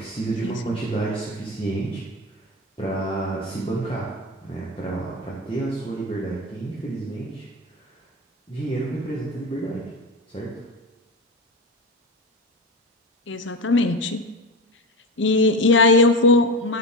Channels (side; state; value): both; normal; correlation 0.23